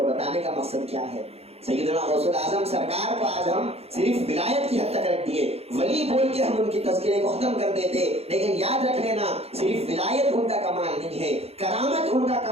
بتانے کا مقصد کیا ہے, سیدنا غوث الاعظم سرکار کو آج ہم صرف ولایت کی حد تک رکھ دیے, ولی بول کے ہم ان کی تذکرے کو ختم کر دیتے, لیکن یاد رکھ لینا صرف ولایت ان کا کمال نہیں ہے, کرامت ان کا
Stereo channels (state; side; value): late; left; 0.29 ms